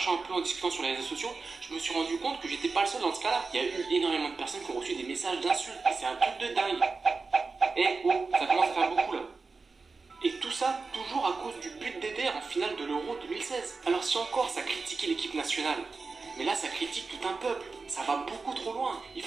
un peu, en discutant sur les réseaux sociaux, je me suis rendu compte que j'étais pas le seul dans ce cas-là. Il y a eu énormément de personnes qui ont reçu des messages d'insultes. Et c'est un truc de dingue. Eh oh, ça commence à faire beaucoup là. Et tout ça, toujours à cause du but d'Eder en finale de l'Euro 2016. Alors si encore ça critiquait l'équipe nationale, mais là ça critique tout un peuple, ça va beaucoup trop loin. Il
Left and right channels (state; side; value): quieter; left; 4.2 dB